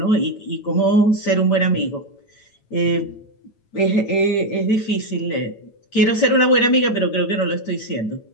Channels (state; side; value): late; right; 9.0 ms